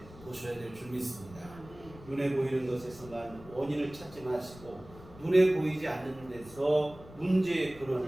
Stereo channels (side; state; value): left; noise; rumble, 19 dB below the sound